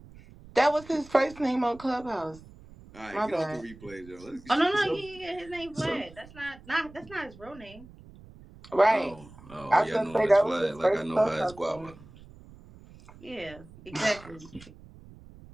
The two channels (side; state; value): right; noise; rumble, 20 dB below the sound